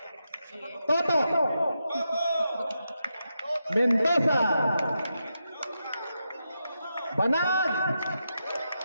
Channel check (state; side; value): inverted; both; correlation -0.86